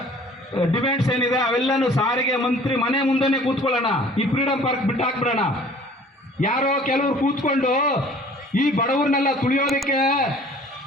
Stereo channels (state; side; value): normal; both; correlation 0.51